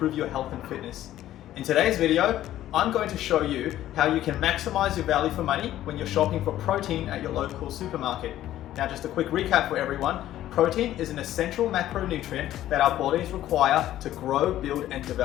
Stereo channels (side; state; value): right; quieter; 13.2 dB